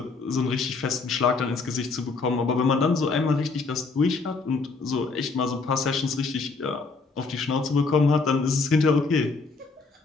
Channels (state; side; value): quieter; right; 4.1 dB